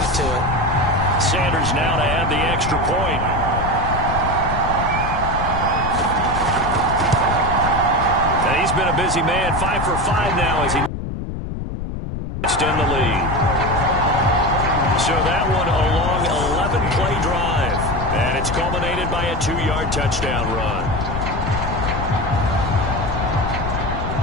to it. Sanders now to add the extra point. And he's been a busy man. 5 for 5 now as he in the lead. So that one a long 11-play drive. And it's culminated by a 2-yard touchdown run.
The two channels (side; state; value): left; noise; rumble, 5 dB below the sound